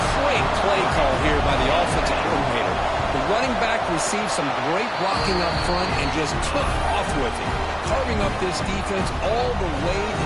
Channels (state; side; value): identical; both; correlation 1.00